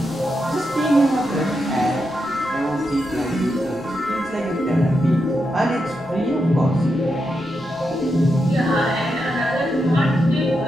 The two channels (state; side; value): noise; right; rumble, 25 dB below the sound